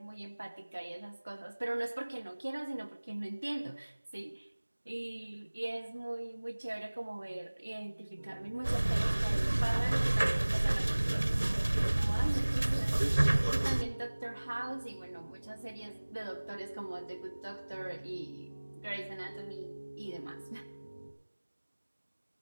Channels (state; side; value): inverted; both; correlation -1.00